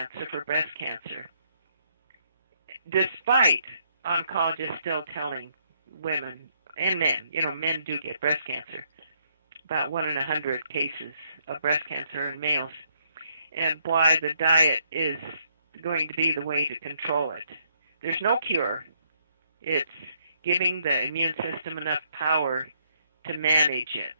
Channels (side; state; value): both; inverted; correlation -0.71